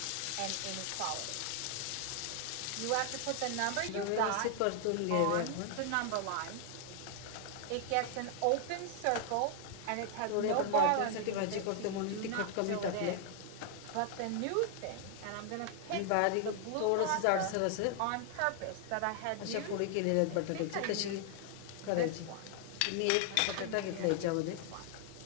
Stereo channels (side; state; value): both; different; correlation 0.00